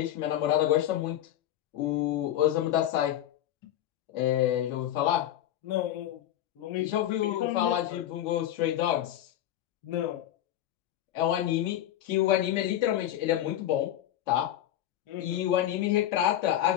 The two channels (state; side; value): quieter; right; 12.2 dB